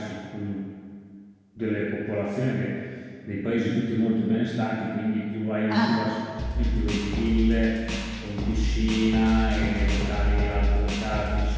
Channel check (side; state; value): both; identical; correlation 1.00